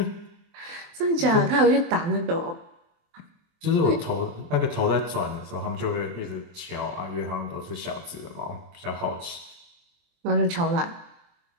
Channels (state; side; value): late; left; 23 ms